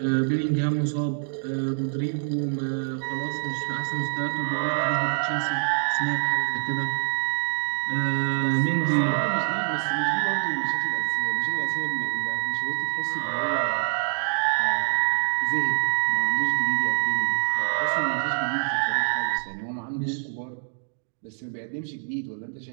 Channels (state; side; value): silent; left; digital silence